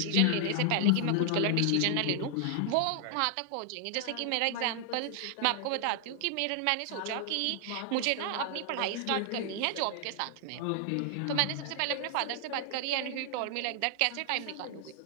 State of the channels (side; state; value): both; different; correlation 0.00